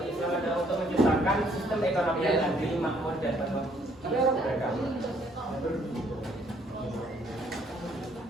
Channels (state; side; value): normal; both; correlation 0.65